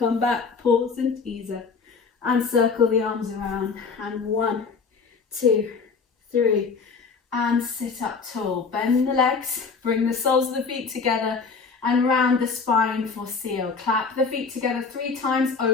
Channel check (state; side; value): quieter; right; 5.0 dB